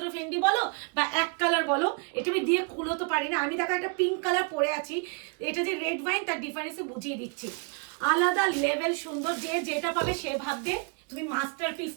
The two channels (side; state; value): left; quieter; 34.6 dB